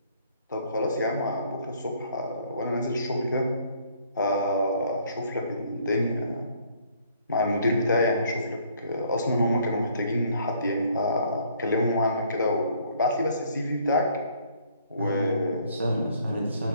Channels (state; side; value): inverted; both; correlation -0.62